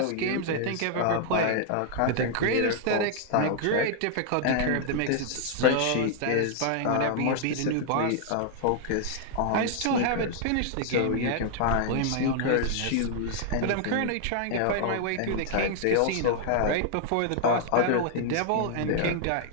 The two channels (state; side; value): different; both; correlation 0.00